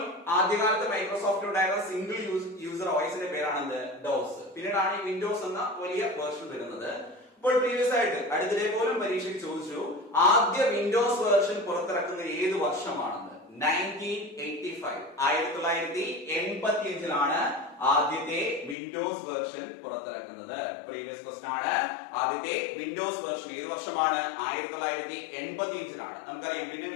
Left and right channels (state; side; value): drops out; right; at 18.8 s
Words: ആദ്യകാലത്ത് മൈക്രോസോഫ്റ്റ് ഉണ്ടായിരുന്ന സിംഗിൾ യൂസർ OSന്റെ പേരാണ് ഡോസ്. പിന്നീടാണ് ഈ വിൻഡോസ് എന്ന വലിയ വേർഷൻ വരുന്നത്. ഇപ്പോൾ പ്രീവിയസ് ആയിട്ട് അടുത്തിടെ പോലും പരീക്ഷയ്ക്ക് ചോദിച്ചു, ആദ്യ വിൻഡോസ് വേർഷൻ പുറത്തിറക്കുന്നത് ഏത് വർഷമാണെന്ന്? 1985. 1985 ആദ്യത്തെ വിൻഡോസ് വേർഷൻ പുറത്തിറക്കുന്നത്. പ്രീവിയസ് ക്വസ്റ്റൻ ആണ്. ആദ്യത്തെ വിൻഡോസ് വേർഷൻ ഏത് വർഷമാണ്? 1985. നമുക്കറിയാം, പിന്നെ